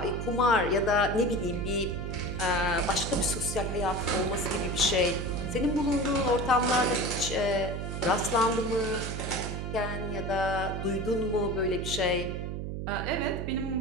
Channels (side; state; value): right; noise; hum, 4 dB below the sound